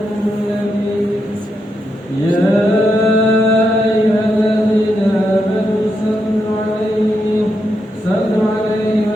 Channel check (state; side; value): normal; both; correlation 0.83